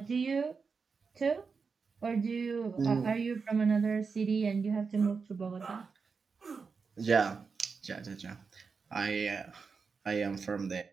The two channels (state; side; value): quieter; left; 5.1 dB